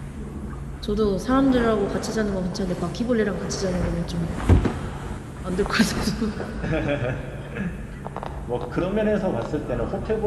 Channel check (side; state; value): both; identical; correlation 1.00